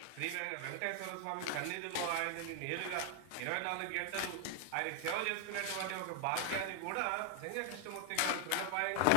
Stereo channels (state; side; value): different; both; correlation 0.00